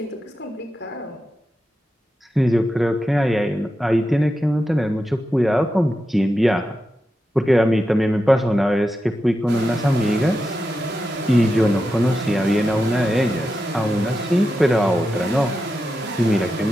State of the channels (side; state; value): both; normal; correlation 0.89